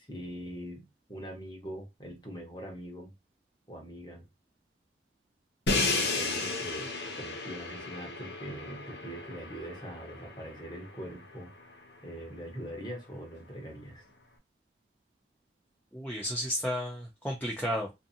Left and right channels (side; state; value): both; normal; correlation 0.31